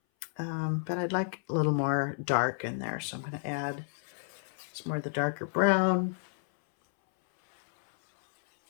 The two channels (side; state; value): right; silent; 57 dB below the other